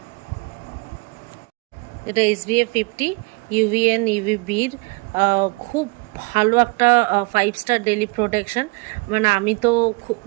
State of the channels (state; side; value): quieter; left; 28.6 dB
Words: এটা SPF 50 UVN UVBর খুব ভালো একটা 5 স্টার ডেলি প্রোটেকশন। মানে আমি তো